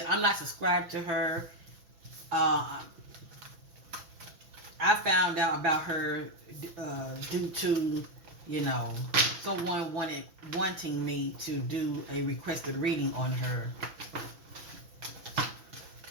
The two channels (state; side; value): late; left; 6.1 ms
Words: I'm not subscribed to her. I found out about her due to, someone wanting me to do a requested reading on her.